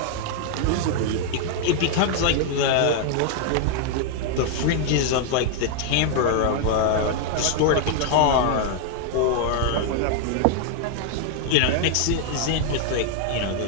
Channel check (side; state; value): both; different; correlation 0.00